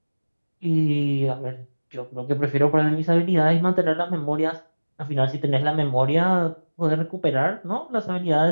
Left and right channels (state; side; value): inverted; both; correlation -1.00